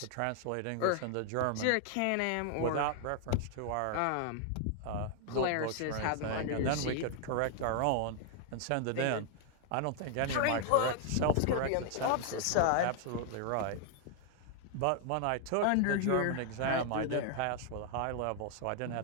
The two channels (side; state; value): both; different; correlation 0.00